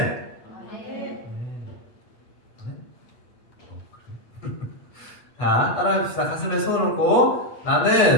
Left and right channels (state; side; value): late; right; 8.1 ms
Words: 자, 따라합시다. 가슴에 손을 얹고,